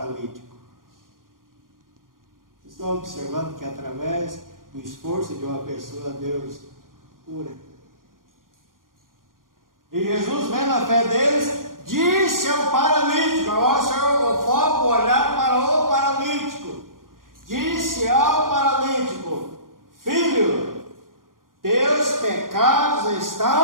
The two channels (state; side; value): late; left; 0.90 ms